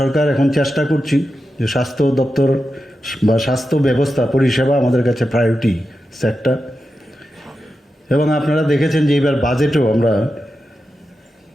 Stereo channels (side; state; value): both; normal; correlation 0.90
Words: এখন চেষ্টা করছি যে স্বাস্থ্য দপ্তর বা স্বাস্থ্য ব্যবস্থা পরিষেবা আমাদের কাছে প্রায়োরিটি সেক্টর। এবং আপনারা দেখেছেন যে এবার বাজেটেও আমরা